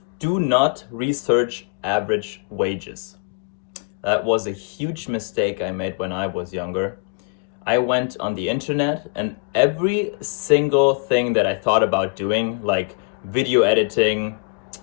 do not research average wages. That was a huge mistake I made when I was younger. I went on the internet and every single thing that I thought about doing, like video editing,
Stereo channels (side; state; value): right; quieter; 35.6 dB